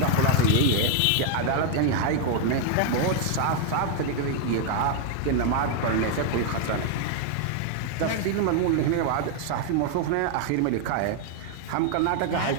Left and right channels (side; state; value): both; different; correlation 0.00